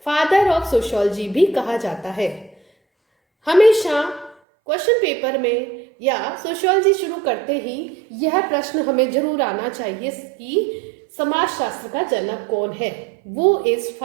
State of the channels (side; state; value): left; drops out; at 4.4 s